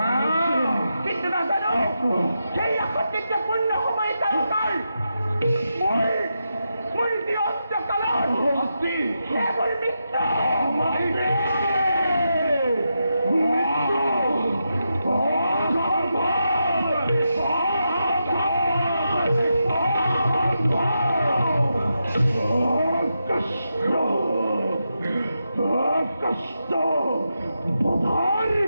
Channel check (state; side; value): inverted; both; correlation -0.86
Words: কিন্তু নাজানো সেই আসক্তিত্ব পূৰ্ণ সময় তেওঁলোকৰ মোৰ যি অন্তকালত সেইবোৰ মৃত্যু কষ্ট বধার